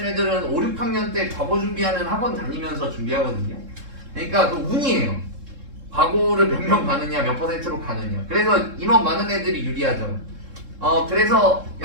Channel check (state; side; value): late; left; 3.7 ms